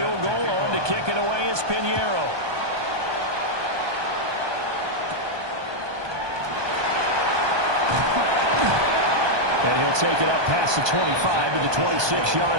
goal, on to kick it away is Pinheiro. And he'll take it up past the 25 to the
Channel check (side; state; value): left; late; 1.2 ms